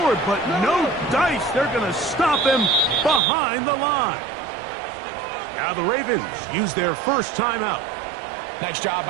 but no dice. They're going to stop him behind the line. Now the Ravens use their first timeout. Nice job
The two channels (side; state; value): left; drops out; at 3.2 s